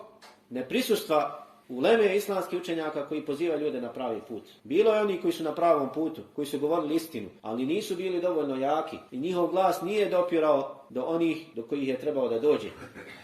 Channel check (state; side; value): identical; both; correlation 1.00